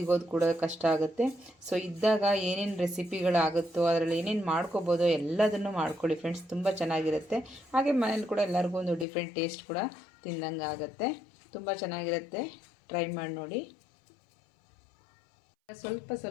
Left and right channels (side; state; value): right; drops out; at 9.1 s